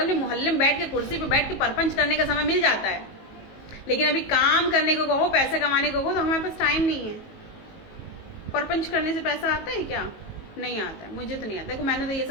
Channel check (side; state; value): right; late; 19 ms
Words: में मोहल्ले में बैठ के कुर्सी पे बैठ के परपंच करने का समय मिल जाता है। लेकिन अभी काम करने को कहो, पैसा कमाने को कहो तो हमारे पास टाइम नहीं है। परपंच करने से पैसा आता है क्या? नहीं आता है, मुझे तो नहीं आता। देखो मैंने तो ये